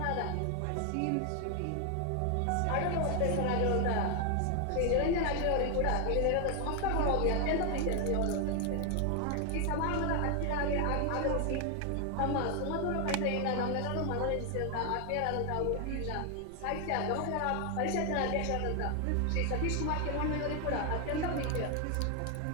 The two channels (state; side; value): different; both; correlation 0.00